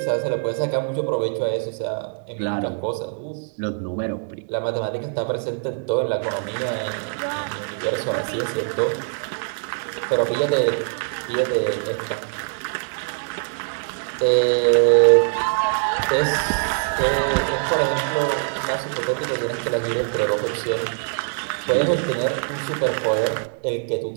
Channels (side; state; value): left; silent; 59 dB below the other